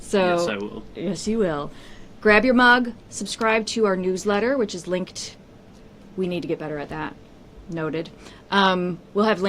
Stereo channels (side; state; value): both; identical; correlation 1.00